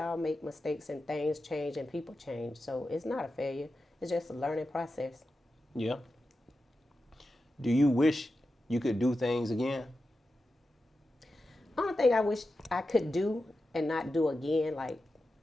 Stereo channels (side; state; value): both; normal; correlation 0.91